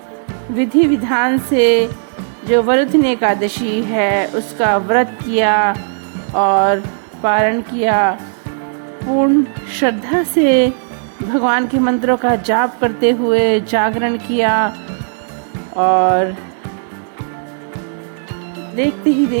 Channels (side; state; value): left; silent; digital silence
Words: विधि विधान से जो वरुथिनी एकादशी है उसका व्रत किया और पारण किया। पूर्ण श्रद्धा से भगवान के मंत्रों का जाप करते हुए जागरण किया और देखते ही